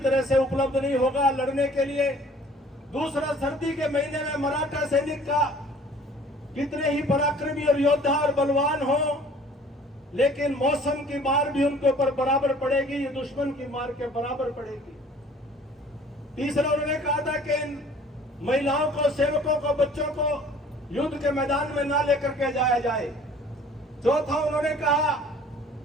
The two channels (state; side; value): normal; both; correlation 0.51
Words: से उपलब्ध नहीं होगा लड़ने के लिए। दूसरा, सर्दी के महीने में मराठा सैनिक का कितने ही पराक्रमी और योद्धा और बलवान हो, लेकिन मौसम की मार भी उनके ऊपर बराबर पड़ेगी, ये दुश्मन की मार के बराबर पड़ेगी। तीसरा, उन्होंने कहा था कि इन महिलाओं को, सेवकों को, बच्चों को युद्ध के मैदान में ना लेकर के जाया जाए। चौथा, उन्होंने कहा